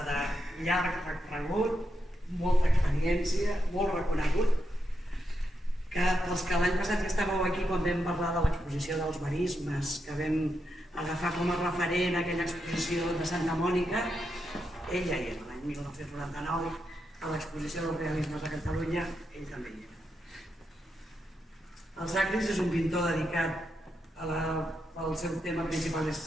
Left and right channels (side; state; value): both; normal; correlation 0.84